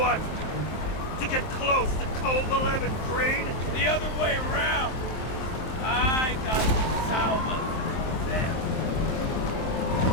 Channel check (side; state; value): right; late; 23 ms